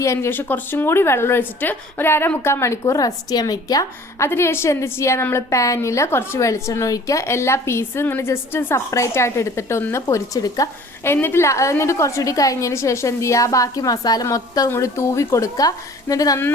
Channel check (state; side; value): normal; both; correlation 0.49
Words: ശേഷം കുറച്ചും കൂടി വെള്ളം ഒഴിച്ചിട്ട് ഒരു 1/2-3 മണിക്കൂർ റെസ്റ്റ് ചെയ്യാൻ വെക്കുക. അതിനുശേഷം എന്ത് ചെയ്യുക, നമ്മൾ പാനിൽ കുറച്ച് വെളിച്ചെണ്ണ ഒഴിക്കുക. എല്ലാ പീസും ഇങ്ങനെ ജസ്റ്റ് സെപ്പറേറ്റ് ആയിട്ട് എടുത്തിട്ട് ഒന്ന് പൊരിച്ചെടുക്കുക. എന്നിട്ട് കുറച്ചുകൂടി കഴിഞ്ഞതിന് ശേഷം എന്ത് ചെയ്യുക, ബാക്കി മസാല മൊത്തം കൂടി തൂവി കൊടുക്കുക. എന്നിട്ട്